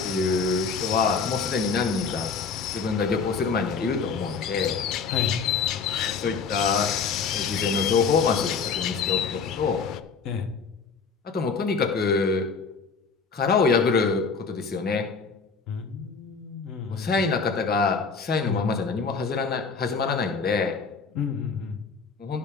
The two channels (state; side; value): quieter; right; 5.2 dB